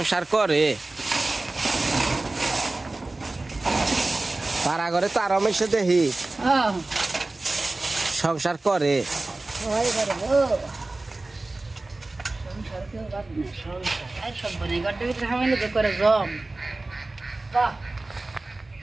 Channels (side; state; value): left; quieter; 3.1 dB